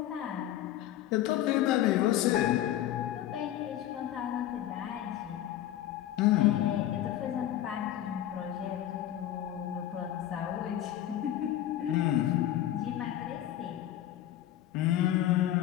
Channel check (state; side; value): quieter; right; 12.5 dB